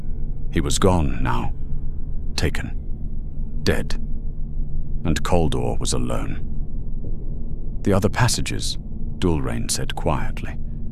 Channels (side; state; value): both; identical; correlation 1.00